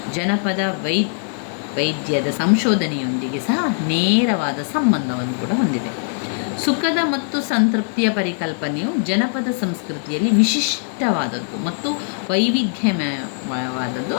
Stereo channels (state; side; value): silent; right; digital silence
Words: ಜನಪದ ವೈದ್ಯದ ಸಂಶೋಧನೆಯೊಂದಿಗೆ ಸಹ ನೇರವಾದ ಸಂಬಂಧವನ್ನು ಕೂಡ ಹೊಂದಿದೆ. ಸುಖದ ಮತ್ತು ಸಂತೃಪ್ತಿಯ ಪರಿಕಲ್ಪನೆಯು ಜನಪದ ಸಂಸ್ಕೃತಿಯಲ್ಲಿ ವಿಶಿಷ್ಟವಾದದ್ದು ಮತ್ತು ವೈವಿಧ್ಯಮಯವಾದದ್ದು.